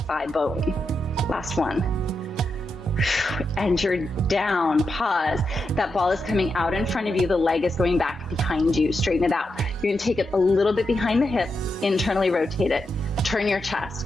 bone. Last one. And you're down, pause. That ball is coming out in front of you. The leg is going back behind you. Straighten it out. You're gonna take it a little bit behind the hip, internally rotate it. Turn your chest.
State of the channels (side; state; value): both; normal; correlation 0.86